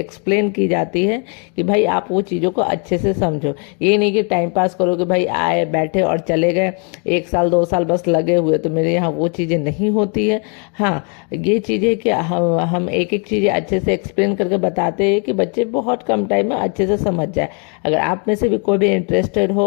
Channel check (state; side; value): quieter; right; 38.2 dB